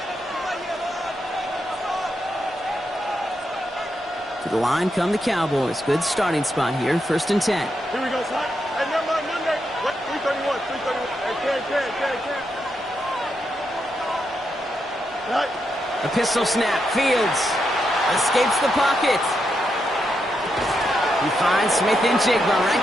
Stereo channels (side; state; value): both; normal; correlation 0.83